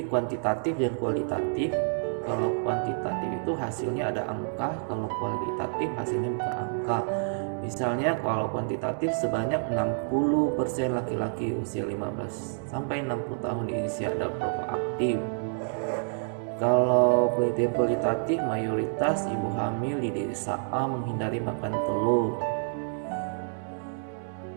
kuantitatif dan kualitatif. Kalau kuantitatif itu hasilnya ada angka, kalau kualitatif hasilnya bukan angka. Misalnya kalau kuantitatif sebanyak 60% laki-laki usia 15 sampai 60 tahun di Indonesia ada perokok aktif. Kalau penelitian kualitatif mayoritas ibu hamil di desa A menghindari makan telur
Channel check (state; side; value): silent; left; digital silence